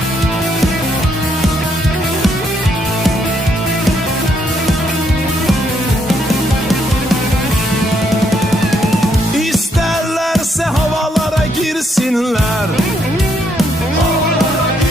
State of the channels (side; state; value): both; normal; correlation 0.74